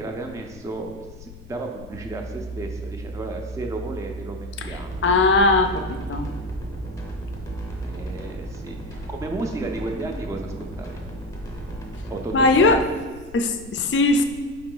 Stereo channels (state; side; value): noise; left; rumble, 18 dB below the sound